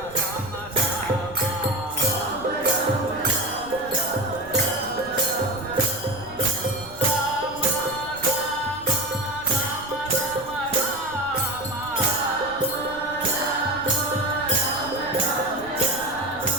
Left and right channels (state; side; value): noise; right; rumble, 19 dB below the sound